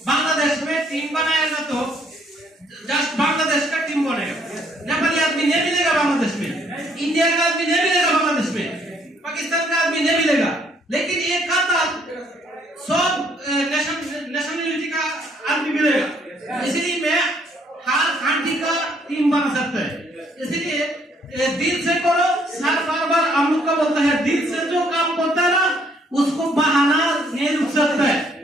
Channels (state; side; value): normal; both; correlation 0.66